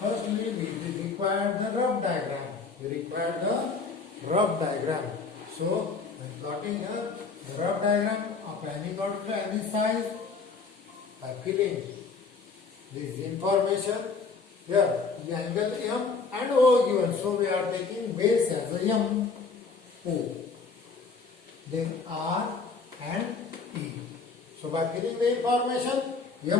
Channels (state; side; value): quieter; right; 4.6 dB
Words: rough diagram. We require the rough diagram. So when plotting the rough diagram of any node to any size, by filling this information, here the angle M and O given. So we are taking base as a M, O. Then R and E. So by filling the information,